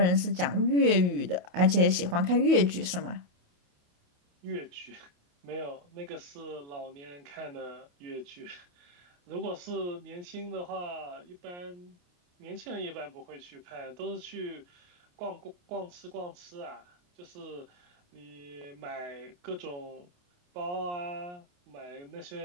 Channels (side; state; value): left; late; 28 ms